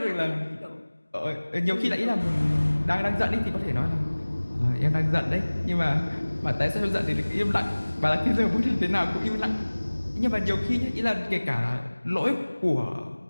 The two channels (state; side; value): inverted; both; correlation -1.00